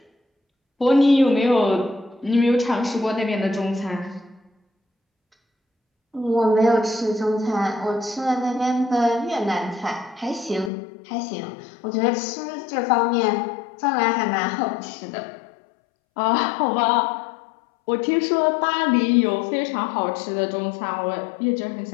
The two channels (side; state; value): right; drops out; at 10.7 s